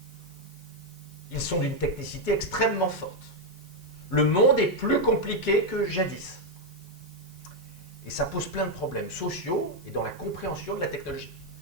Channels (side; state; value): left; noise; hiss, 27 dB below the sound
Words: Ils sont d'une technicité extrêmement forte. Le monde est plus compliqué que jadis. Et ça pose plein de problèmes sociaux et dans la compréhension de la technologie.